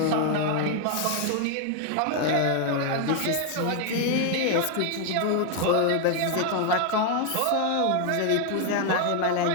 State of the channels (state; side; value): different; both; correlation 0.01